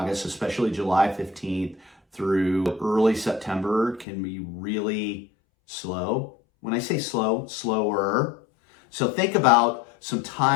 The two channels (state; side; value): drops out; right; at 4.0 s